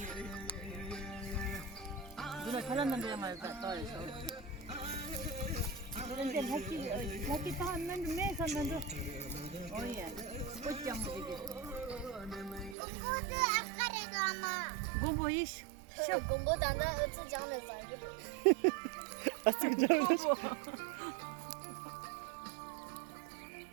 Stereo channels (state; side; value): drops out; left; at 12.8 s